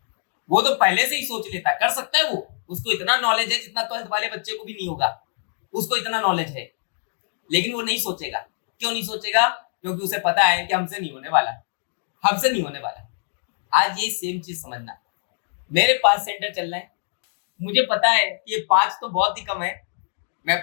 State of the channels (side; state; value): right; silent; digital silence